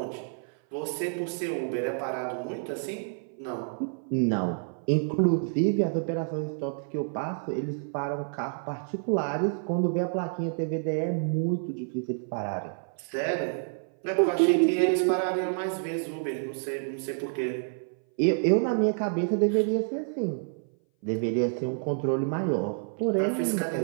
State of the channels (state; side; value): silent; left; 57 dB below the other